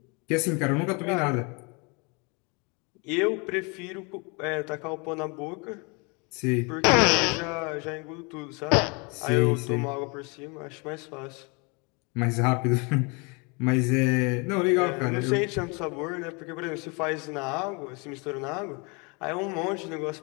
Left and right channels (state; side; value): quieter; right; 30.9 dB